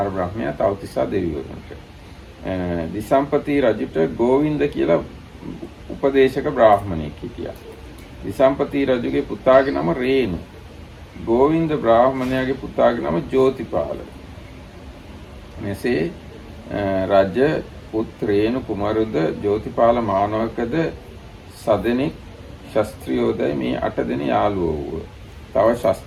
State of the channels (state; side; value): identical; both; correlation 1.00